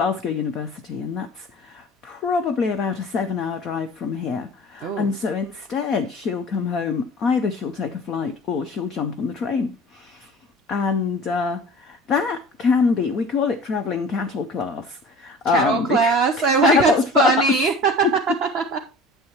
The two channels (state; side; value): normal; both; correlation 0.42